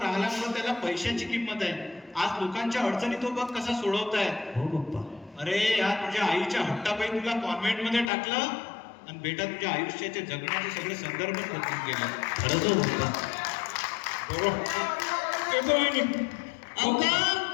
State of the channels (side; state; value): right; drops out; at 8.1 s